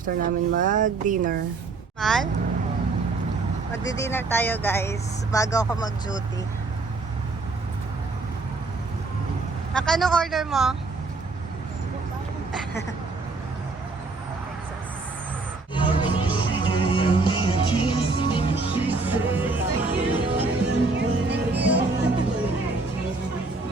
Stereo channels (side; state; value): left; quieter; 3.7 dB